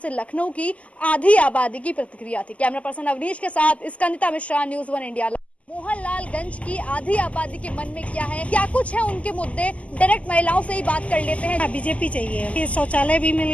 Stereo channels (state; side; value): late; right; 0.067 ms